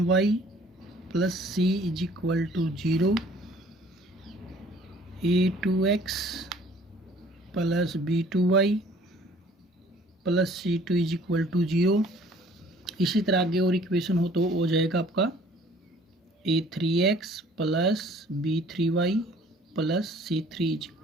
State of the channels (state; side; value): normal; both; correlation 0.54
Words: plus c is equal to 0, a2x plus b2y plus c2 is equal to 0। इसी तरह आगे और इक्वेशन हो तो हो जाएगा आपका a3x plus b3y plus c3 is